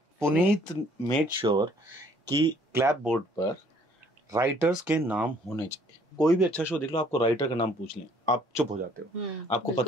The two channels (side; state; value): both; normal; correlation 0.60